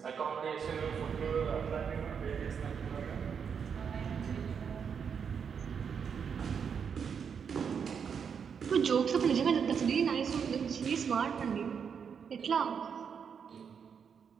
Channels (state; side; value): quieter; left; 6.9 dB